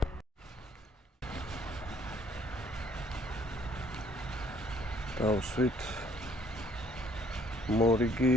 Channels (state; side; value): normal; both; correlation 0.62